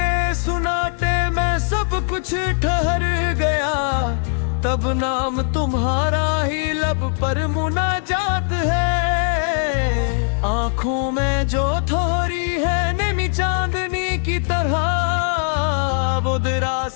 सुनाटे में सब कुछ ठहर गया, तब नाम तुम्हारा ही लब पर मुनाजात है। आंखों में जो थोड़ी है नेमी चांदनी की तरह, वो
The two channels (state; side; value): silent; right; 64 dB below the other